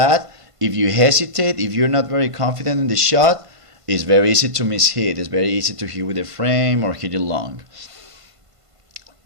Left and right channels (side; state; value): left; late; 1.5 ms